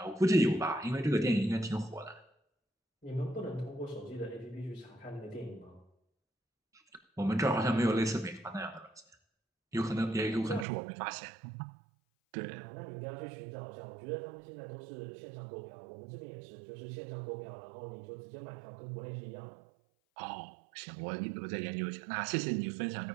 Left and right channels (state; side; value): drops out; left; at 10.7 s